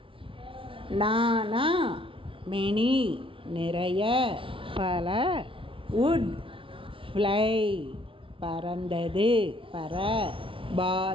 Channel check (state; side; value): late; left; 0.25 ms